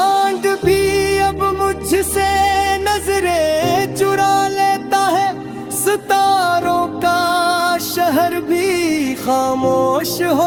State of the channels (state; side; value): identical; both; correlation 1.00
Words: भी अब मुझसे नजरें चुरा लेता है, सितारों का शहर भी खामोश